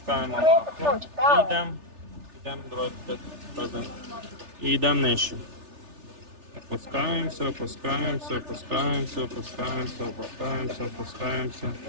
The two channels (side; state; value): left; late; 3.3 ms